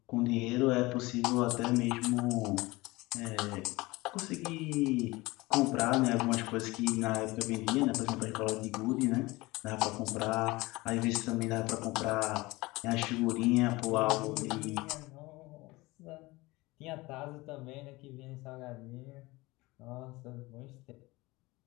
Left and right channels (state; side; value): quieter; right; 21.5 dB